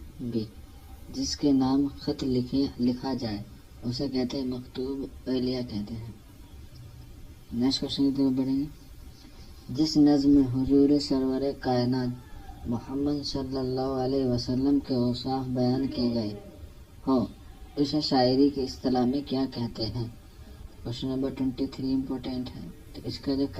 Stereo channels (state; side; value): identical; both; correlation 1.00